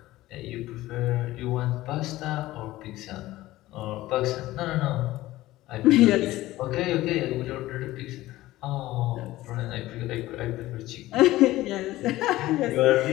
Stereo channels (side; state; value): right; quieter; 16.8 dB